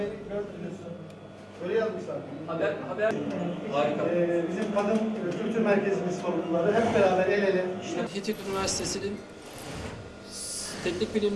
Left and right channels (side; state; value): both; identical; correlation 1.00